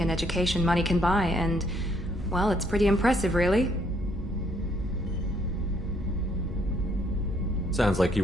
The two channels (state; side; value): normal; both; correlation 0.68